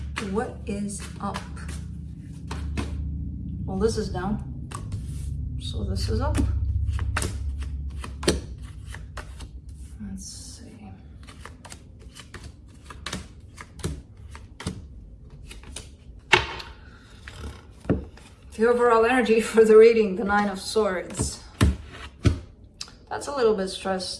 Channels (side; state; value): both; identical; correlation 1.00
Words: What is up? Well, this is down, so this is up. Let's see. The overall energy for the reading, the Nine of Swords. That's a little bit